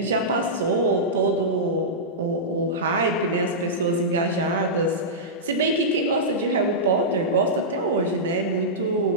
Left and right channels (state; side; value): normal; both; correlation -0.13